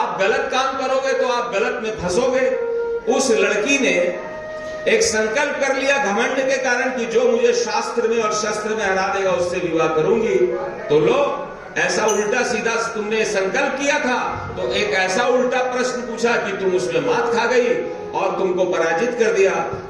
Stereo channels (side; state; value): both; identical; correlation 1.00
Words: गलत काम करोगे तो आप गलत में फंसोगे। उस लड़की ने एक संकल्प कर लिया घमंड के कारण कि जो मुझे शास्त्र में और शस्त्र में हरा देगा उससे विवाह करूंगी। तो लो, ऐसा उल्टा सीधा तुमने संकल्प किया था तो एक ऐसा उल्टा प्रश्न पूछा कि तुम उसमें मात खा गई और तुमको पराजित कर दिया।